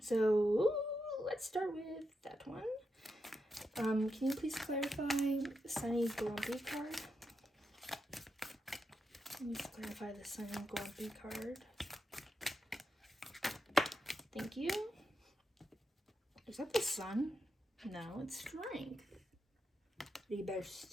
So, let's start with that one. Can you please clarify Sunny Grumpy card? Please clarify the Sunny Grumpy card. Thank you. Is that the sun? No, it's strength.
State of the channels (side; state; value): both; normal; correlation 0.85